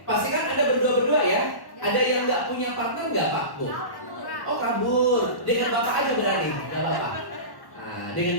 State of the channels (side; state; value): right; late; 1.1 ms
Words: Pastikan Anda berdua-berdua ya. Ada yang nggak punya partner nggak Pak Bu? Oh kabur. Dengan Bapak aja berani, nggak apa-apa. Nah,